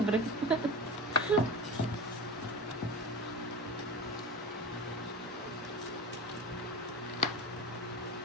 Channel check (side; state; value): both; normal; correlation 0.28